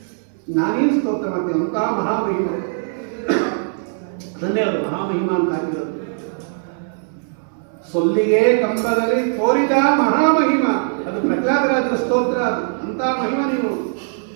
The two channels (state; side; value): silent; left; 63 dB below the other